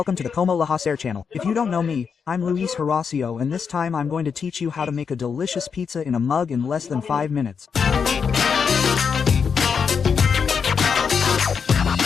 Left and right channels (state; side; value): quieter; right; 6.3 dB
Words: to the Como La Hacer channel. If you don't know me, I'm Luis Horacio and this time I'm going to teach you how to make a delicious pizza in a mug in less than 5 minutes.